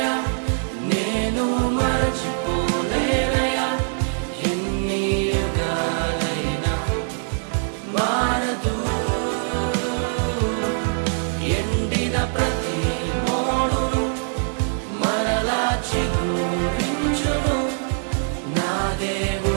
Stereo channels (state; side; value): silent; left; digital silence